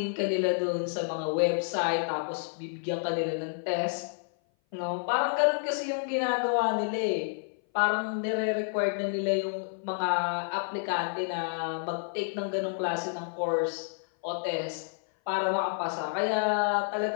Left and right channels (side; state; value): right; silent; 56 dB below the other